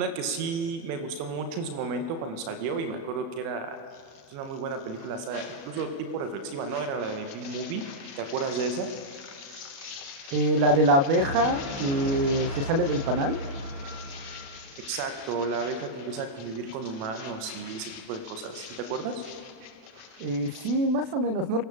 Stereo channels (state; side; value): late; left; 36 ms